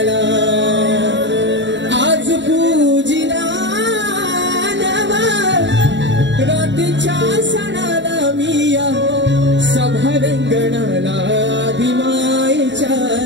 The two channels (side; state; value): left; late; 0.53 ms